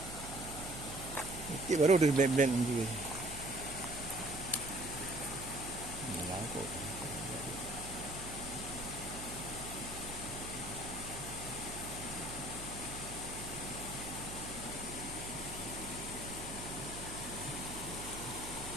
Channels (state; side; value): noise; right; hum, 10 dB below the sound